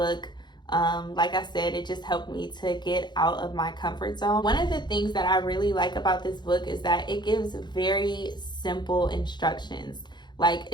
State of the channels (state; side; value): late; right; 0.21 ms